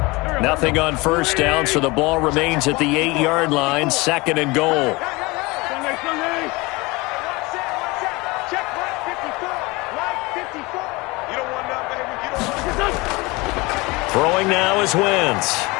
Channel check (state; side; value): quieter; right; 24.0 dB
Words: Nothing on 1st down, so the ball remains at the 8-yard line, 2nd and goal. Throwing now is Wentz.